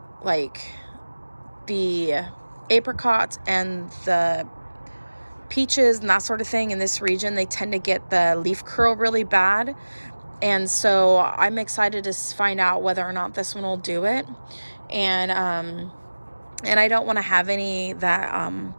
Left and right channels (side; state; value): both; inverted; correlation -1.00